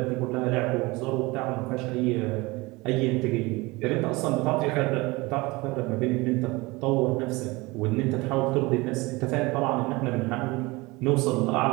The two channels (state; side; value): quieter; left; 23.2 dB